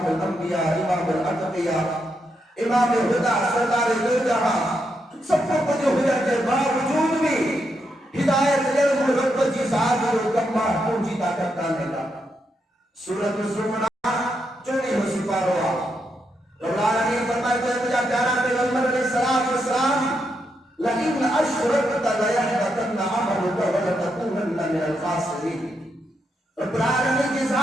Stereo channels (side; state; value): both; normal; correlation 0.82